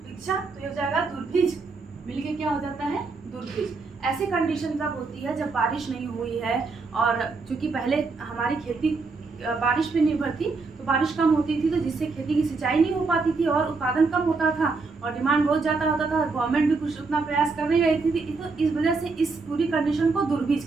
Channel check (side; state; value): left; quieter; 4.1 dB